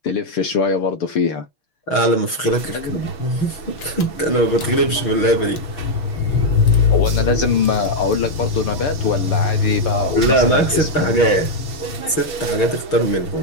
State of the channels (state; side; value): late; right; 6.4 ms